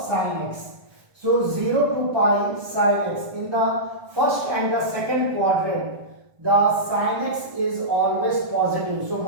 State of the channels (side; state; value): left; late; 1.5 ms